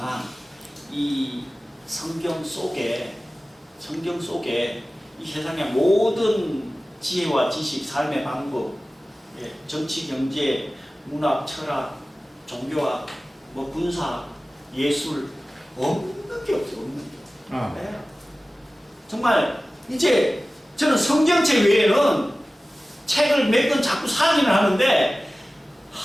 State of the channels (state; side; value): normal; both; correlation 0.97